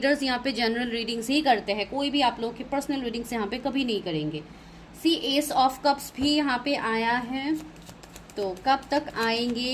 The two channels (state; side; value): identical; both; correlation 1.00